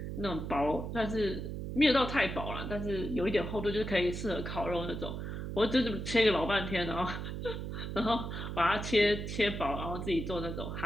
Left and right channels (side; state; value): right; noise; hum, 5 dB below the sound